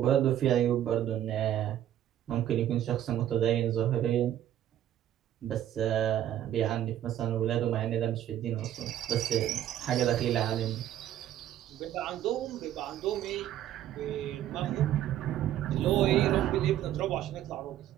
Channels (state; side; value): quieter; left; 11.8 dB